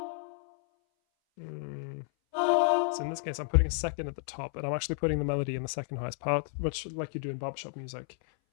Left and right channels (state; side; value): silent; right; 57 dB below the other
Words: case, I'm putting a second at the top, and I'm actually putting the melody in the second highest part, much like you do in barbershop music.